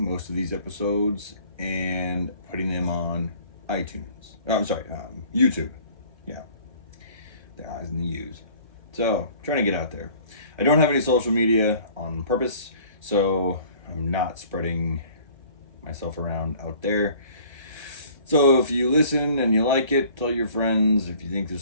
most of these episodes and putting them on iTunes. YouTube. Yeah, the I's and the U's. So, trying to get out there. I don't have any social media on purpose, so I'm not spreading myself around out there. So if you listen and you like it, tell your friends. If you think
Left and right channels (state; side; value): late; left; 1.3 ms